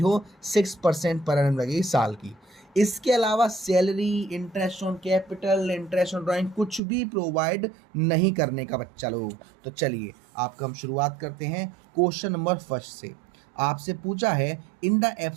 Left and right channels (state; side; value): drops out; left; at 6.8 s